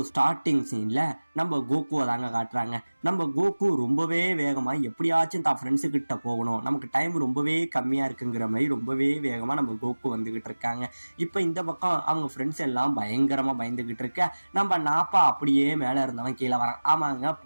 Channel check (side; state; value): both; inverted; correlation -1.00